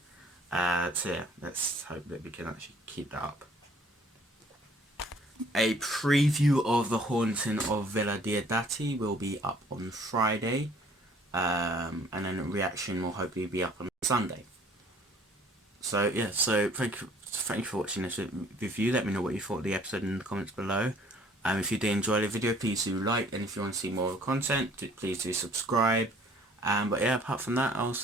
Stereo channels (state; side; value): normal; both; correlation 0.56